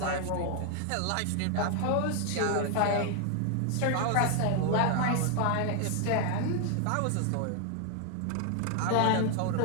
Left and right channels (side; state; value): both; different; correlation 0.00